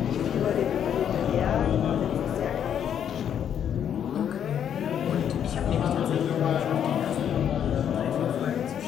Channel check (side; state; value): right; quieter; 9.1 dB